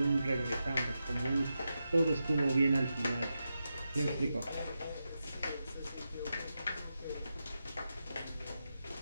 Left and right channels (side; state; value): both; inverted; correlation -0.89